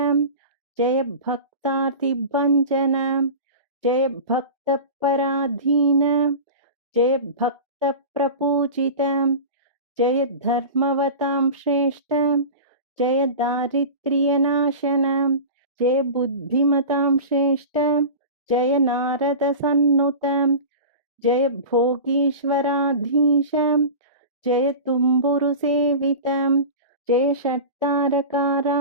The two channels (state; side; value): inverted; both; correlation -0.32